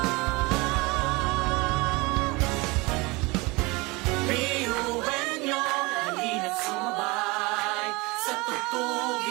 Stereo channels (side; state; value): left; quieter; 24.9 dB